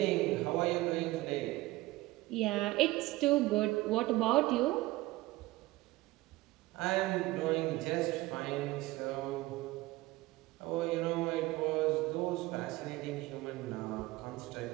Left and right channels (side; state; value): left; quieter; 19.0 dB